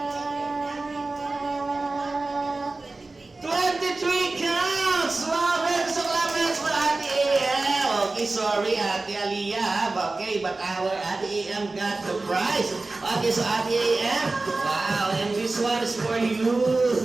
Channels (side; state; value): left; quieter; 3.3 dB